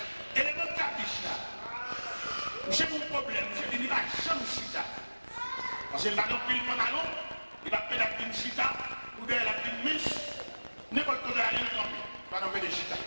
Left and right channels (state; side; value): inverted; both; correlation -1.00